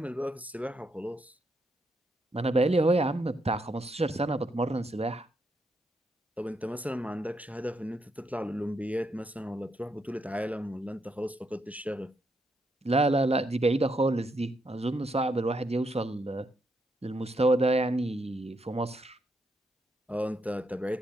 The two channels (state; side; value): normal; both; correlation 0.78